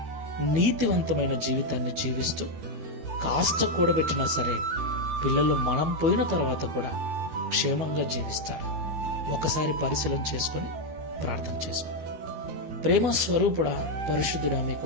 నీతివంతమైన జీవితాన్ని జీవిస్తూ కాస్త కూడబెట్టినా సరే పిల్లలు మనం పోయిన తర్వాత కూడా క్షేమంగా జీవిస్తారు. ఒకసారి పరిశీలన చేసుకొని ప్రార్థన చేసుకో. ప్రేమ స్వరూపుడా, పరిశుద్ధుడా, మీకు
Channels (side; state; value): left; late; 13 ms